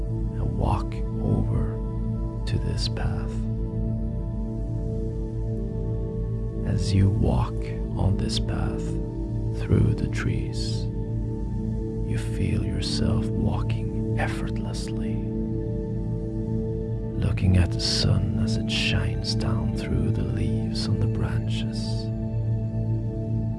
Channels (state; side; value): identical; both; correlation 1.00